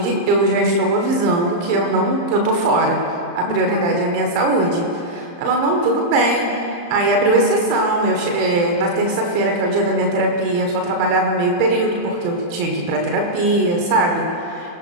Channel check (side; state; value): left; late; 35 ms